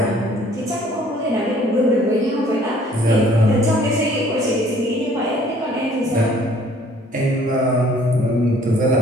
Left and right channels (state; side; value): normal; both; correlation 0.57